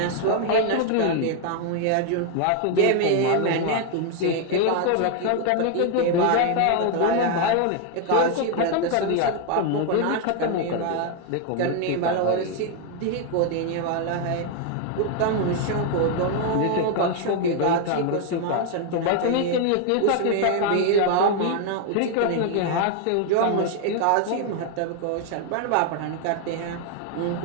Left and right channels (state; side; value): different; both; correlation 0.00